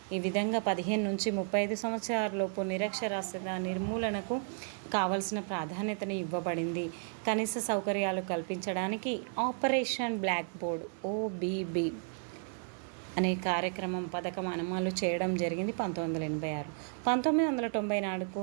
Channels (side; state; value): left; silent; 56 dB below the other